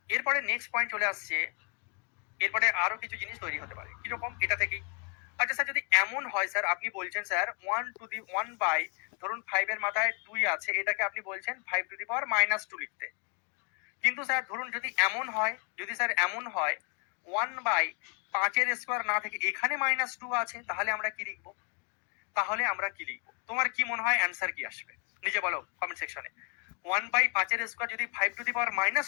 এরপরে নেক্সট পয়েন্ট চলে আসছে, এরপরে আরো কিছু জিনিস তৈরি হতে পারে কিরকম, এটা থেকেই। আচ্ছা স্যার যদি এমন হয় স্যার, আপনি বলছেন স্যার 1 ধরুন 5 এর মাথায় 2 আছে, এটাকে আপনি বলছেন 5 টু দি পাওয়ার -2 লিখতে। কিন্তু স্যার ধরুন যদি এমন হয়, যদি স্যার এমন হয় 1/5 এর স্কয়ার না থেকে এখানে -2 আছে, তাহলে আমরা কি লিখবো? তাহলে আমরা কি লিখবো? তোমার কি মনে হয় অ্যান্সার কি আসবে? নিজে বলো কমেন্ট সেকশনে। 1/5 এর স্কয়ার যদি 5 টু দি পাওয়ার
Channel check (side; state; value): right; quieter; 37.5 dB